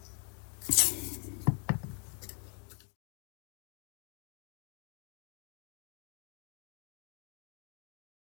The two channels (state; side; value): quieter; right; 34.9 dB